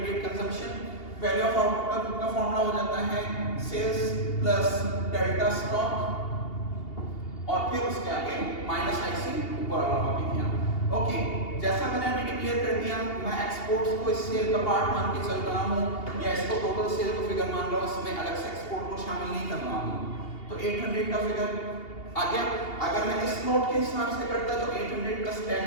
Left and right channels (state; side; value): late; right; 2.8 ms